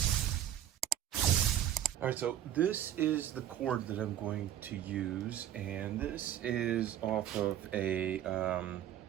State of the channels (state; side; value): quieter; left; 11.4 dB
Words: All right, so this is the cord that I'm going to use, and this is off of a